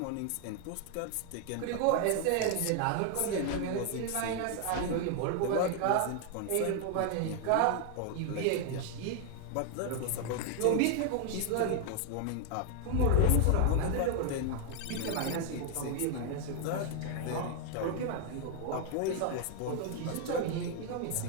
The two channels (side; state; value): both; different; correlation 0.00